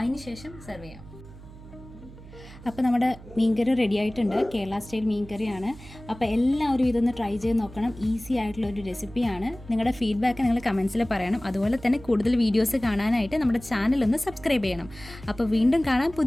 ശേഷം സെർവ് ചെയ്യാം. അപ്പോൾ നമ്മുടെ മീൻകറി റെഡി ആയിട്ടുണ്ട്. കേരള സ്റ്റൈൽ മീൻകറിയാണ്. അപ്പോൾ എല്ലാവരും ഇതൊന്ന് ട്രൈ ചെയ്ത് നോക്കണം. ഈസി ആയിട്ടുള്ളൊരു റെസിപ്പിയാണ്. നിങ്ങളുടെ ഫീഡ്ബാക്ക് നിങ്ങൾ കമൻസിൽ പറയണം. അതുപോലെ തന്നെ കൂടുതൽ വീഡിയോസ് കാണാനായിട്ട് നമ്മുടെ ചാനൽ ഒന്ന് സബ്സ്ക്രൈബ് ചെയ്യണം. അപ്പോൾ വീണ്ടും കാണാം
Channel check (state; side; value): noise; right; hum, 18 dB below the sound